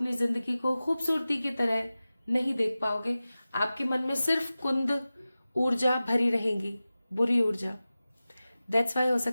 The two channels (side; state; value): both; inverted; correlation -0.96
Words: जिंदगी को खूबसूरती की तरह नहीं देख पाओगे। आपके मन में सिर्फ कुंद ऊर्जा भरी रहेगी, बुरी ऊर्जा। दैट्स वाई हो